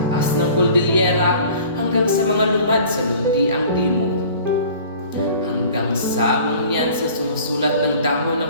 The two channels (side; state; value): both; inverted; correlation -0.46